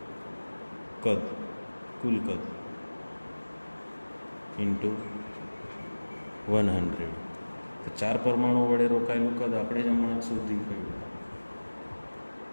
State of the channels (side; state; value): both; inverted; correlation -1.00